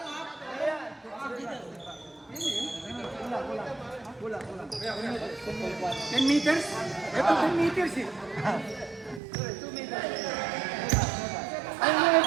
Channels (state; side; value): drops out; left; at 9.2 s